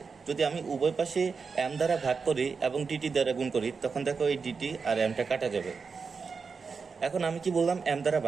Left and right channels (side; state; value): left; quieter; 5.2 dB